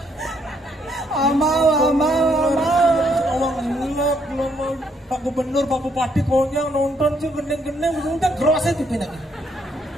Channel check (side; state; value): both; normal; correlation 0.71